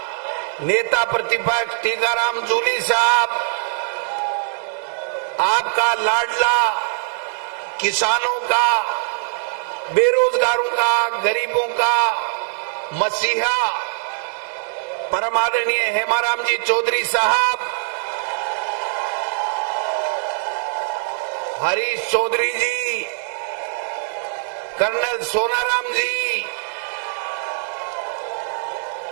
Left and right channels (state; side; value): silent; left; 65 dB below the other